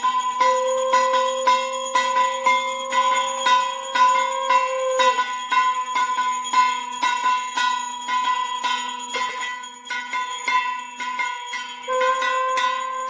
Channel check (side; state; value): both; identical; correlation 1.00